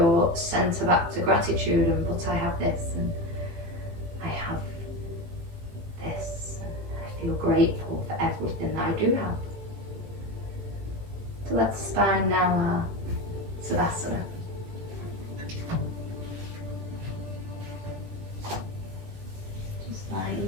center back to gratitude, and but I have this and I have this and I feel grateful for everything that I do have. So let's spine now our Savasana.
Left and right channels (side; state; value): left; late; 18 ms